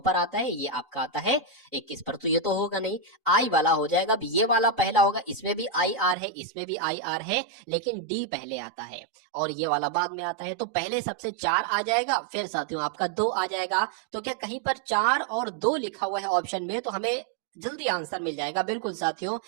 पर आता है, ये आपका आता है 21 पर, तो ये तो होगा नहीं, आई वाला हो जाएगा। अब ये वाला पहला होगा, इसमें भी आई आर है, इसमें भी आई आर है, लेकिन डी पहले आता है और ये वाला बाद में आता है, तो पहले सबसे 4 आ जाएगा, फिर साथियों आपका 2 आ जाएगा। तो क्या कहीं पर 4 और 2 लिखा हुआ है ऑप्शन में, तो हमें जल्दी आंसर मिल जाएगा। बिल्कुल साथियों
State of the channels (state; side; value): drops out; left; at 6.2 s